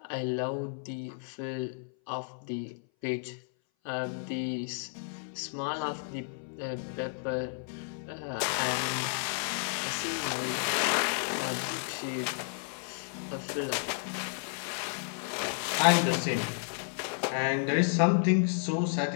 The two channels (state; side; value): silent; right; 56 dB below the other